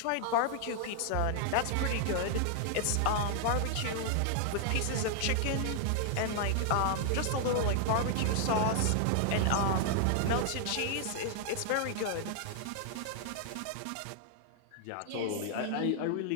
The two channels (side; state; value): both; different; correlation -0.01